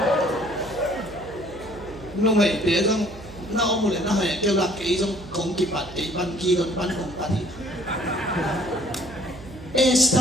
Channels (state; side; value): noise; right; hum, 17 dB below the sound